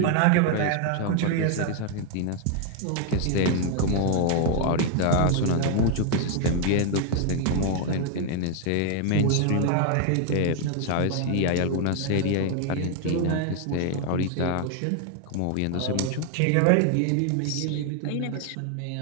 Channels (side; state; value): both; different; correlation 0.00